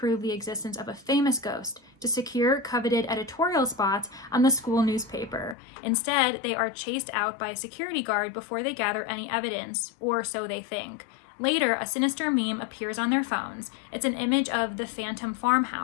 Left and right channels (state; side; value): drops out; right; at 5.6 s